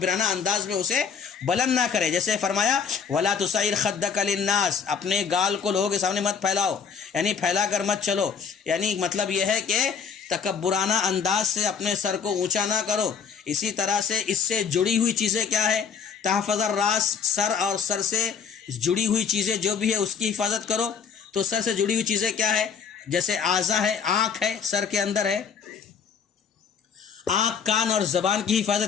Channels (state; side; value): quieter; right; 6.5 dB